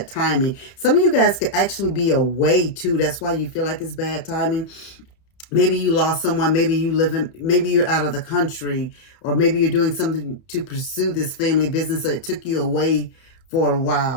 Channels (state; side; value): late; right; 31 ms